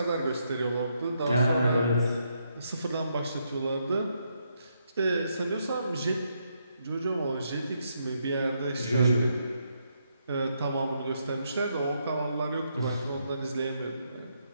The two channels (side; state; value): both; inverted; correlation -0.78